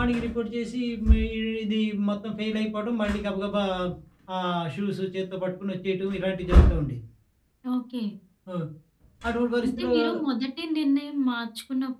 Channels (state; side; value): identical; both; correlation 1.00